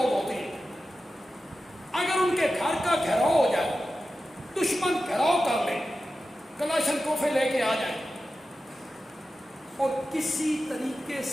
ہوتے ہیں، اگر ان کے گھر کا گھیراؤ ہو جائے، دشمن گھیراؤ کر لے، کلاشن کوفے لے کے آ جائیں اور کسی طریقے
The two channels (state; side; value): normal; both; correlation 0.93